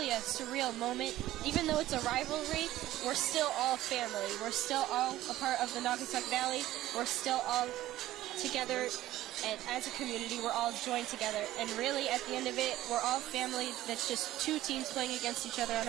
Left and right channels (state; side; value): quieter; left; 14.9 dB